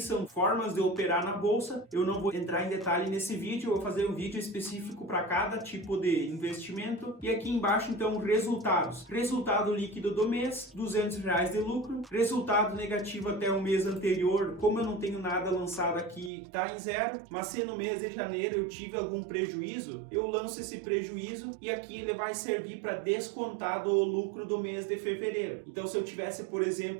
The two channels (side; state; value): left; drops out; at 16.3 s